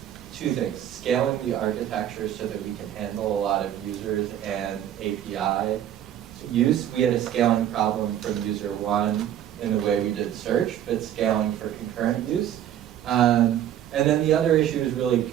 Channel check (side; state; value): left; quieter; 11.0 dB